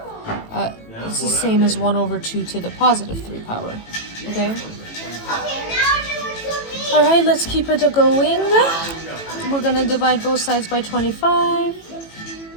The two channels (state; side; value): late; right; 18 ms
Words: It's the same as 1/2 to the +3 power. Okay? Alright, let's keep it going. We're gonna divide both sides by 25